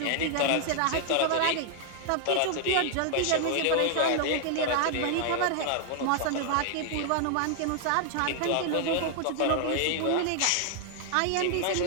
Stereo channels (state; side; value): different; both; correlation 0.00